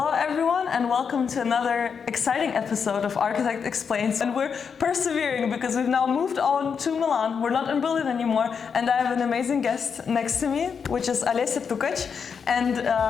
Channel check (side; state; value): right; quieter; 6.4 dB